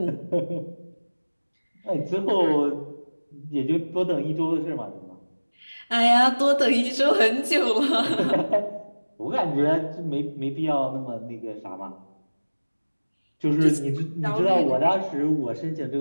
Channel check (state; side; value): inverted; both; correlation -1.00